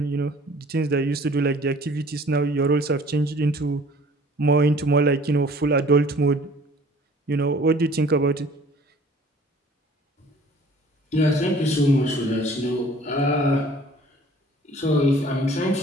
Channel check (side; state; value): both; normal; correlation 0.51